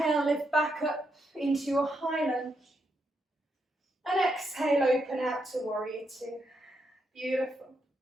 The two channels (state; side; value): normal; both; correlation 0.80